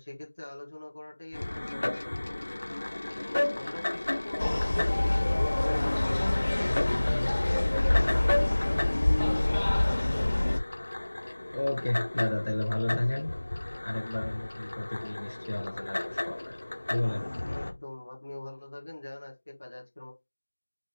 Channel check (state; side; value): inverted; both; correlation -1.00